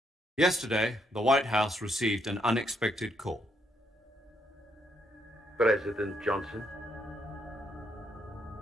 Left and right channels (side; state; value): both; normal; correlation 0.75